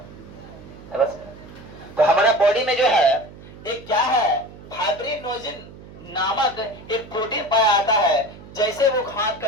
बस। तो हमारा बॉडी में जो है एक क्या है, फाइब्रिनोजेन नामक एक प्रोटीन पाया जाता है। जैसे वो हाथ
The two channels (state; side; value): noise; right; hum, 18 dB below the sound